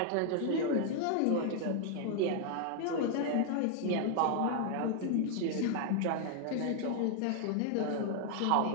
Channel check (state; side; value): different; both; correlation 0.00